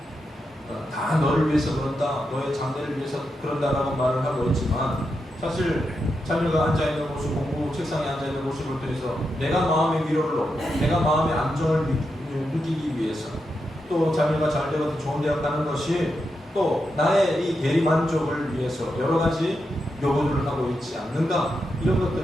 다 너를 위해서 그런다, 너의 장래를 위해서 그런다라고 말을 하고 있지만 사실 자녀가 앉아있는 모습, 공부 책상에 앉아있는 모습을 통해서 내가 마음의 위로를 얻고 내가 마음의 안정을 느끼기 위해서 또 자녀가 잘 되고 좋은 대학 가는 것이 또 나의 이 대리 만족을 위해서 여러 가지 요구들을 하고 있지 않는가 이런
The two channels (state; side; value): normal; both; correlation 0.86